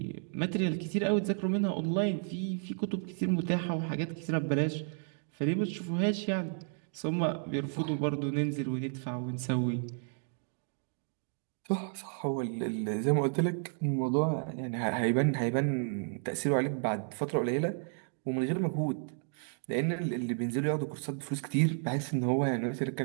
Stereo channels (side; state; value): left; silent; 56 dB below the other